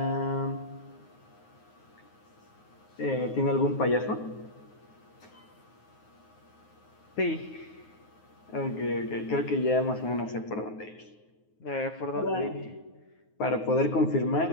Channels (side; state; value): right; late; 9.5 ms